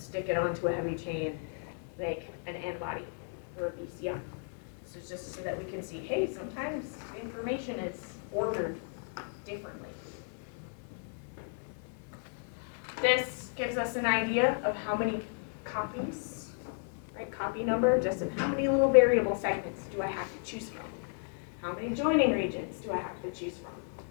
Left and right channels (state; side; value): silent; right; 55 dB below the other